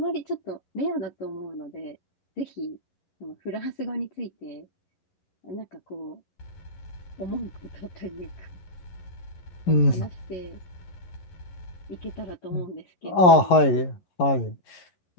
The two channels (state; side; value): late; right; 11 ms